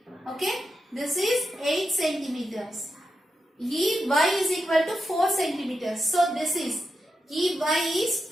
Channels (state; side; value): normal; both; correlation 0.87